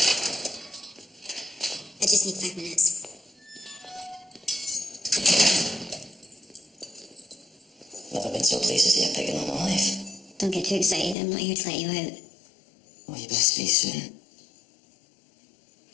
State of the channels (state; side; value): drops out; right; at 11.2 s